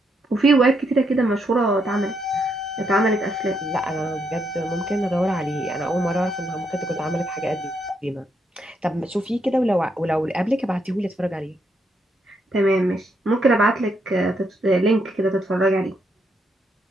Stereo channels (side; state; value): both; normal; correlation 0.77